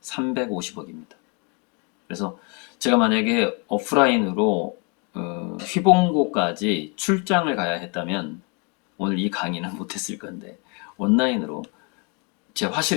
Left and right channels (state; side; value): quieter; right; 34.0 dB